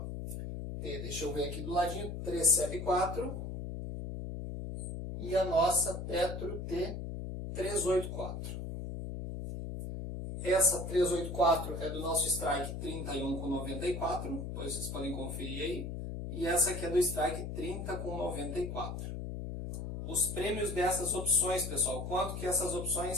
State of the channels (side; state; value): left; noise; hum, 5 dB below the sound